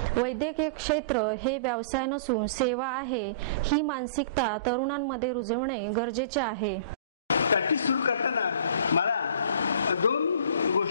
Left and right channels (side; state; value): both; inverted; correlation -0.41